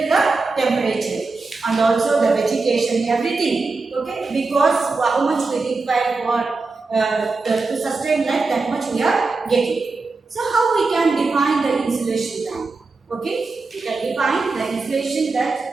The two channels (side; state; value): left; quieter; 3.9 dB